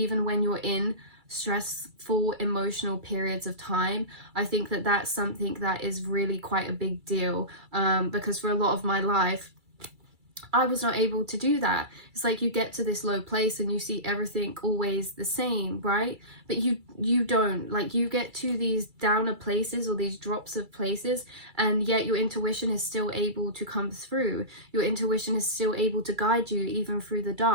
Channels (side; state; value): left; late; 2.3 ms